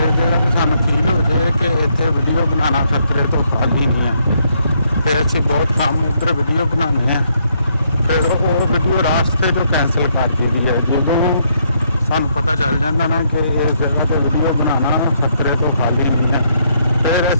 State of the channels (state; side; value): inverted; both; correlation -0.73